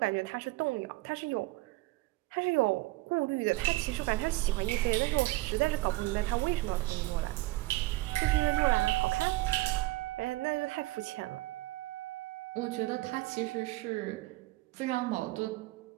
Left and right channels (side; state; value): left; quieter; 19.6 dB